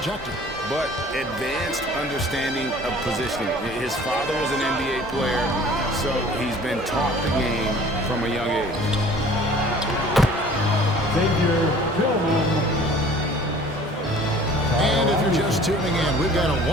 But advanced understanding of positioning. His father was an NBA player, so he's been taught the game from a young age. And if you're just tuning in, we've got a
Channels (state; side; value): normal; both; correlation 0.49